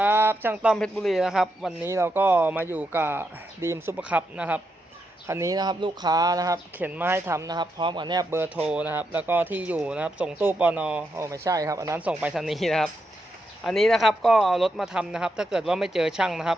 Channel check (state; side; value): normal; both; correlation 0.83